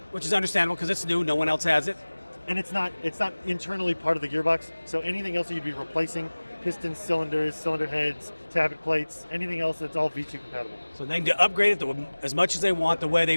Which is understandable because it's new. No one else has it. and it's not internally part of the gearbox. So anything else that you'd be replacing, pistons, cylinders, cylinder heads, tabbet plates, anything else, that's all V2 compatible. So they can upgrade it as much as they want, the way they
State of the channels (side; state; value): both; inverted; correlation -1.00